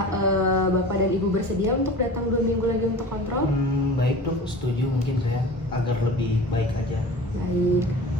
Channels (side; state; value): both; normal; correlation 0.37